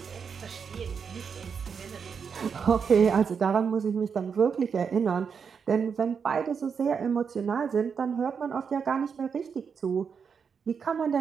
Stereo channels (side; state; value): left; quieter; 6.3 dB